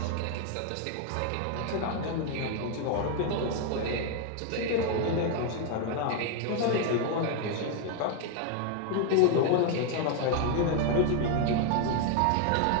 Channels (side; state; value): both; different; correlation 0.01